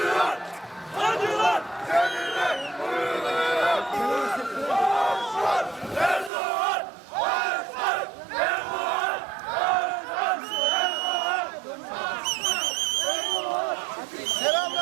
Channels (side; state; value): left; drops out; at 6.3 s